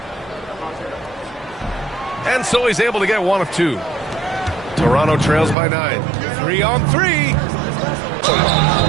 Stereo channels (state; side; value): drops out; left; at 5.6 s